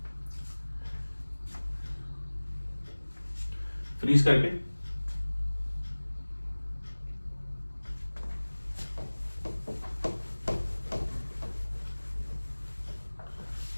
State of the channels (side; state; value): both; inverted; correlation -1.00